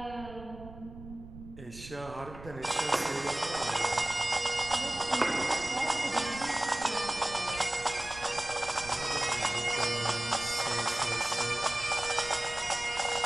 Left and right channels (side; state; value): right; noise; rumble, 15 dB below the sound